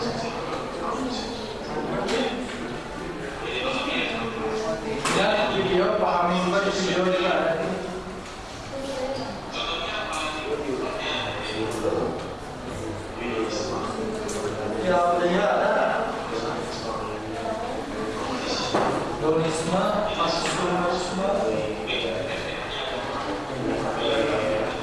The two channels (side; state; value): both; identical; correlation 1.00